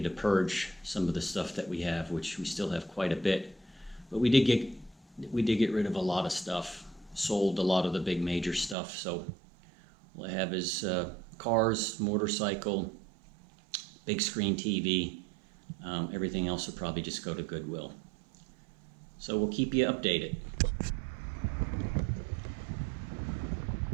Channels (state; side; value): drops out; left; at 8.8 s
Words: to purge some of the stuff that we have, which we still have quite a bit. But we did get rid of a lot of stuff, sold a lot of the big major stuff. So all I have is cars, motorcycle, big screen TV. Everything else will probably just go to Goodwill. So we'll keep you updated.